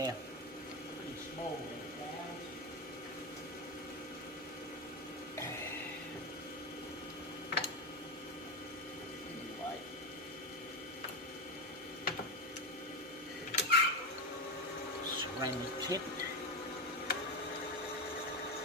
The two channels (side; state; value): both; normal; correlation 0.14